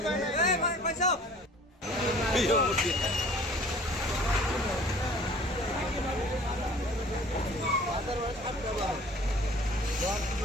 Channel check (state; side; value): normal; both; correlation 0.49